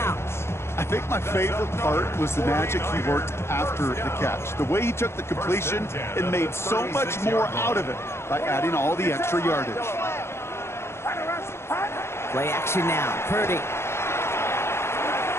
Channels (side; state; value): right; late; 0.12 ms